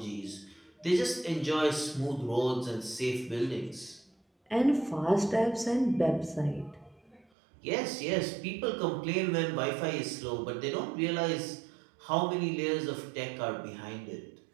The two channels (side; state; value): left; drops out; at 7.2 s